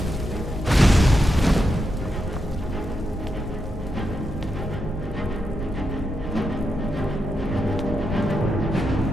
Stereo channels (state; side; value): normal; both; correlation 0.85